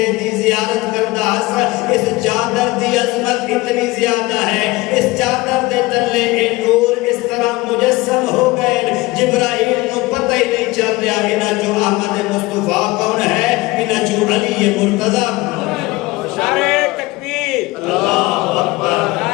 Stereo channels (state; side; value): quieter; right; 20.9 dB